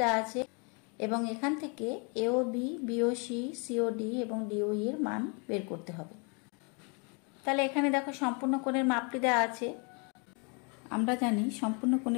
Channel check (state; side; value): quieter; right; 34.5 dB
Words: দেওয়া আছে এবং এখান থেকে এওবি, বিওসি, সিওডি এবং ডিওই এর মান বের করতে হবে। তাহলে এখানে দেখো সম্পূর্ণ কোণের মাপটি দেওয়া আছে। আমরা জানি সম্পূর্ণ